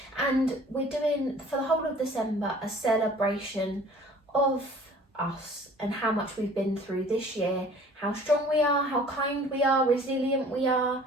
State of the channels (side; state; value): both; normal; correlation 0.50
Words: and we're doing for the whole of December a celebration of us and how much we've been through this year, how strong we are, how kind we are, resilient we are,